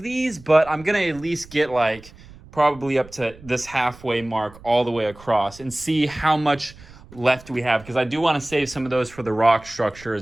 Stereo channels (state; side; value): noise; right; rumble, 21 dB below the sound